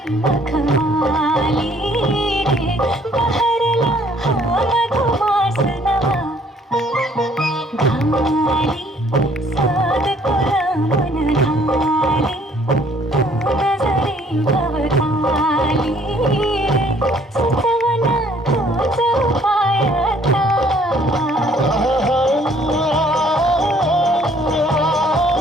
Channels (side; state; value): both; normal; correlation 0.60